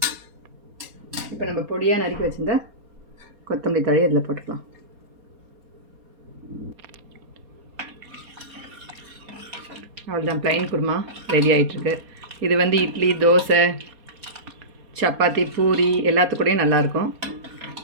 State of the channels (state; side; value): late; left; 4.2 ms